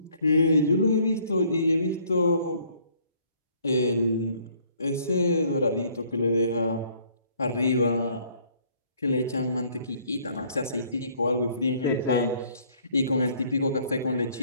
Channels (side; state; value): both; inverted; correlation -0.61